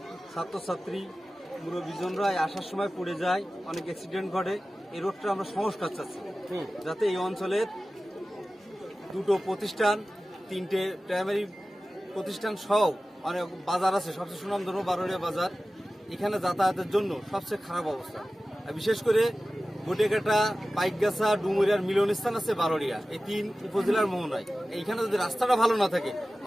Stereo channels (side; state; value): both; normal; correlation 0.96